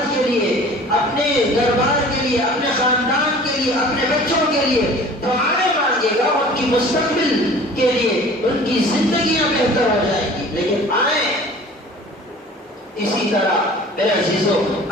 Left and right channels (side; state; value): both; normal; correlation 0.45